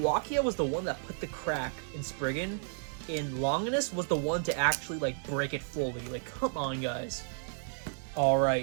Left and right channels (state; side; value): silent; left; 56 dB below the other